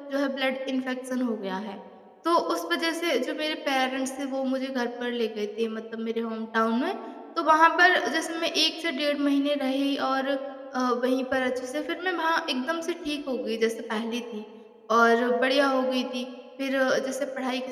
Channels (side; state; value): both; identical; correlation 1.00